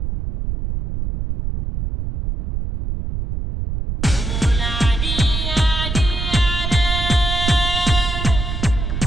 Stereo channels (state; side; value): noise; right; rumble, 4 dB below the sound